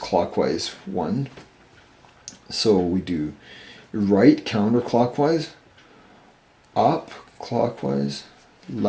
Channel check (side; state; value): both; identical; correlation 1.00